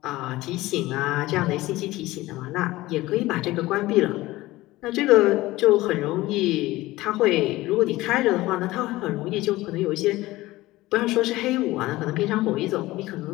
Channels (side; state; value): right; quieter; 18.2 dB